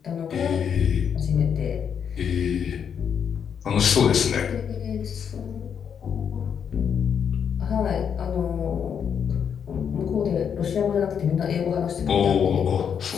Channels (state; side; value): quieter; right; 7.6 dB